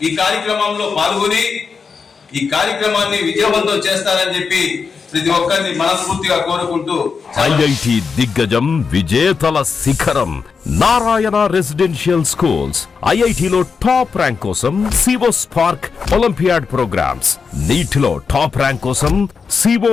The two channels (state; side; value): quieter; right; 5.4 dB